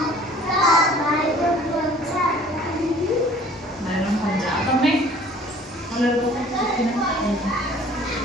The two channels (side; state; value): both; normal; correlation 0.52